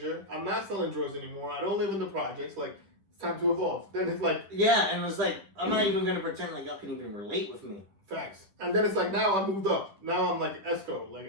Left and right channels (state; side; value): late; left; 10 ms